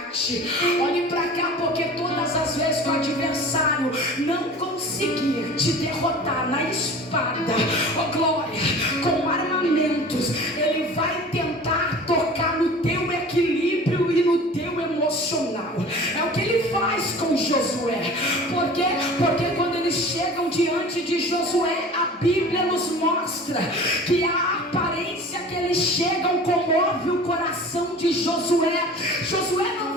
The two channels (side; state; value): both; normal; correlation 0.41